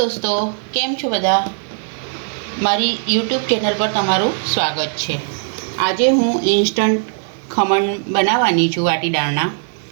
કેમ છો બધા? મારી યુટ્યુબ ચેનલ પર તમારું સ્વાગત છે. આજે હું ઇન્સ્ટન્ટ ખમણ બનાવવાની છું વાટી દાળના.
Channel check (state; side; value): silent; left; 67 dB below the other